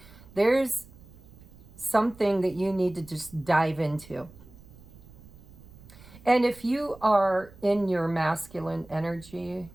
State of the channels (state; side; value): noise; right; rumble, 22 dB below the sound